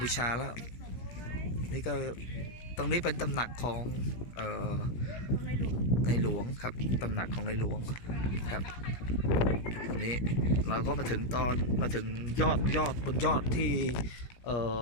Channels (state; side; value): late; right; 17 ms